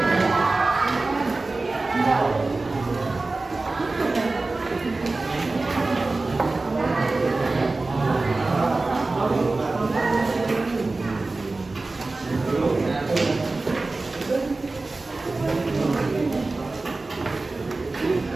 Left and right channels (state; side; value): quieter; left; 3.3 dB